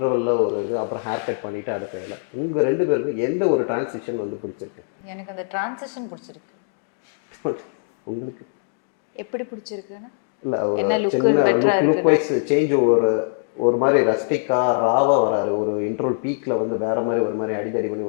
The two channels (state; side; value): silent; right; digital silence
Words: ஒரு இது, அப்புறம் ஹேர் கட் பண்ணிவிட்டு அடுத்த வேலை. உங்கள் 2 பேருக்கும் எந்த ஒரு டிரான்சிஷன் வந்து பிடிச்சிருக்கு? எனக்கு அந்த டிரான்சிஷன் பிடிச்சிருக்கு. உங்களுக்கு எப்படி பிடிச்சிருக்குன்னா இல்லை, ஒரு சின்ன லுக் வைஸ் சேஞ்ச், ஒரு மாதிரி ரஸ்டிக்காக ராவாக வராரு. ஒரு இன்ட்ரோல் பீக்கில் வந்து வேறு மாதிரி ஒரு மாதிரி அடிதடி பண்ணி